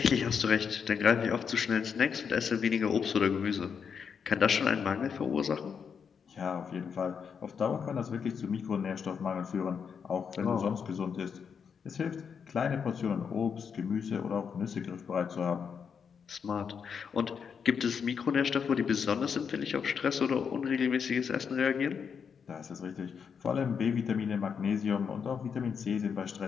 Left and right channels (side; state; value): right; quieter; 6.6 dB